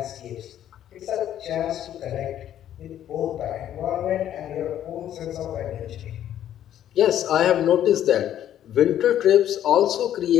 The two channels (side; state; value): right; quieter; 11.1 dB